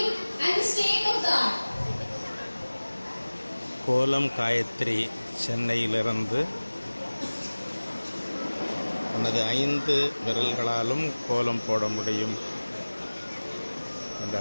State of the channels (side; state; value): both; inverted; correlation -1.00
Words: and the state of the art. கோலம் காயத்ரி சென்னையிலிருந்து தனது 5 விரல்களாலும் கோலம் போட முடியும் என்று